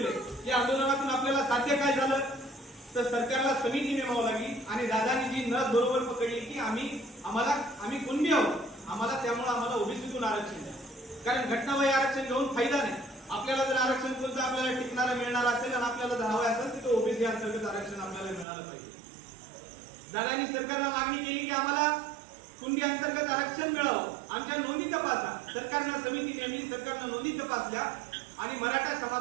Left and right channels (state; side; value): drops out; left; at 18.4 s